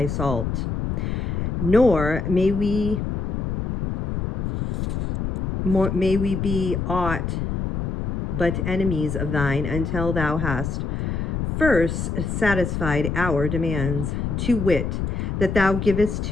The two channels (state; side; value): noise; left; rumble, 2 dB below the sound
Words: salt. Nor may we be aught but enemies of thine, until thou hast first satisfied our demands, to wit, that thou givest